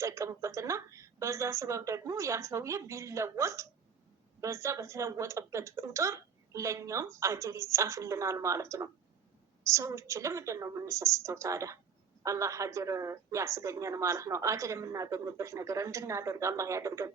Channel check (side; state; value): left; quieter; 6.7 dB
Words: በዛ ሰበብ ደግሞ ያ ሰውዬ ቢለወጥ በዛ በተለወጠበት ቁጥር ለኛም አጅር ይጻፍልናል ማለት ነው። ሰዎች ለምንድን ነው የምንሰስተው ታዲያ? አላህ አጅር ያስገኘን ማለት ነው። አጅር የምናገኝበት ነገር እንድናደርግ አላህ ያደርገን።